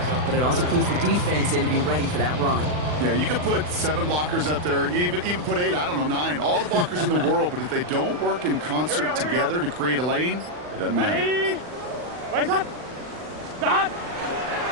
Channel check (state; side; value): late; left; 40 ms